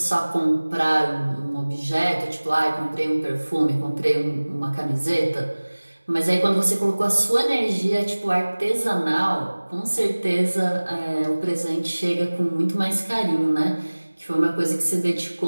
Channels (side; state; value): both; inverted; correlation -1.00